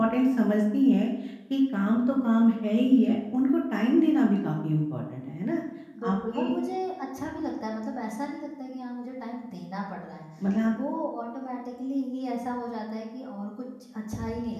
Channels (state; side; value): identical; both; correlation 1.00